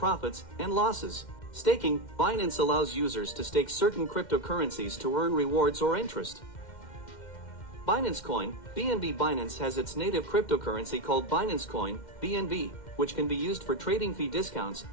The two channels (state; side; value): late; right; 2.1 ms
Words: and losses. Staking. Binance allows users to stake certain cryptocurrencies to earn rewards or interest. Binance Coin. BNB. Binance has its native cryptocurrency called Binance Coin, BNB, which can be used for trading fee discounts,